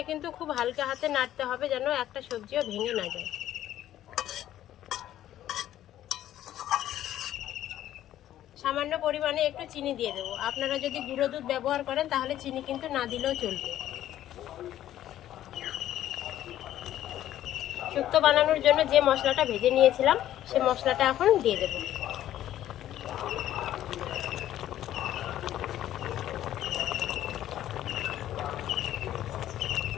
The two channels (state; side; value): quieter; right; 12.5 dB